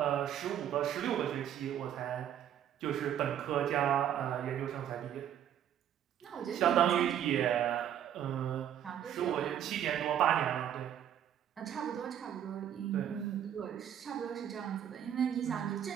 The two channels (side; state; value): left; quieter; 10.1 dB